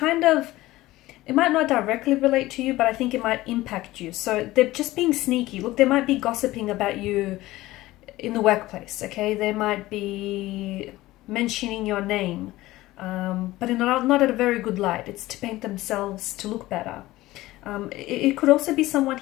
might not directly relate to you, but I think it might impact you. So they're just being sneaky. Look, they might be gossiping about you in the workplace, okay? They might be mentioning your name, but not at a very good light. It's to paint themselves to look better. It could also be someone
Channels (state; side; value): quieter; right; 17.6 dB